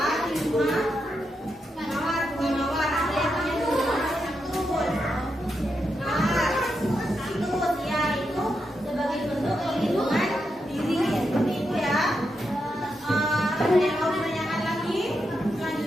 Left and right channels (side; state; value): both; normal; correlation 0.84